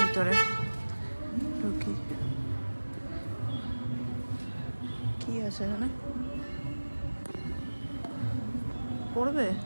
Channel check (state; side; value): inverted; both; correlation -1.00